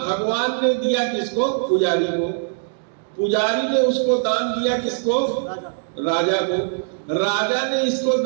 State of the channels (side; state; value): left; silent; digital silence